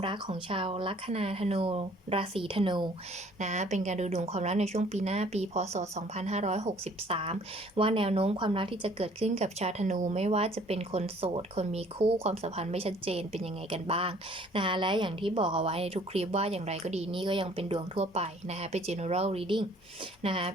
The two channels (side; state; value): both; normal; correlation 0.56